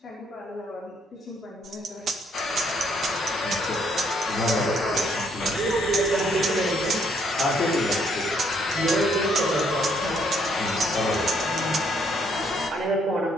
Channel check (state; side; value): normal; both; correlation 0.69